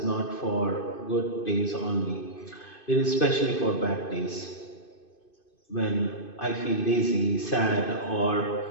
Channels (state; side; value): late; right; 2.5 ms